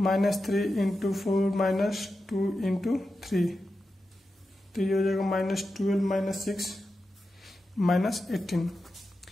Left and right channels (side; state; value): both; normal; correlation 0.90